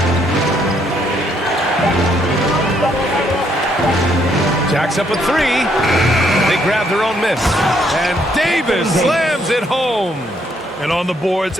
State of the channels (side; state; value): both; normal; correlation 0.71